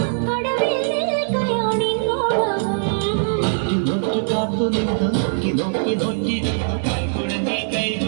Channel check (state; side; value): silent; left; digital silence